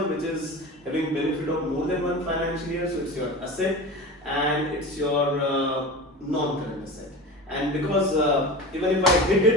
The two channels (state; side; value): normal; both; correlation 0.31